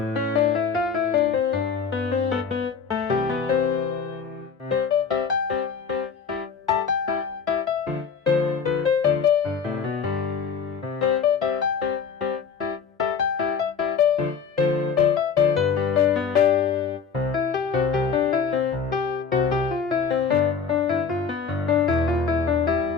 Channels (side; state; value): right; quieter; 6.0 dB